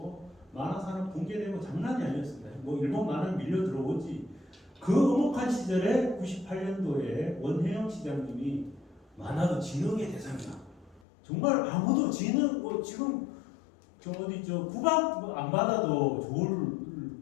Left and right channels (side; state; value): right; drops out; at 11.0 s